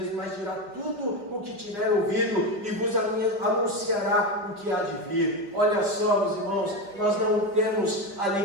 mas dirá tudo o que tiver ouvido e vos anunciará o que há de vir. Olha só, meus irmãos, nós não temos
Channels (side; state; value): left; late; 4.9 ms